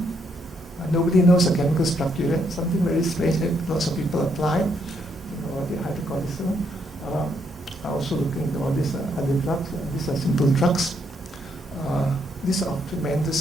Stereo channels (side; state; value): both; normal; correlation 0.75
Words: Nobody knows the chemical structure yet. Something very strange that lots of people apply. The hydrocortisone. I also looking into all these other drugs. These are simple drugs. These are of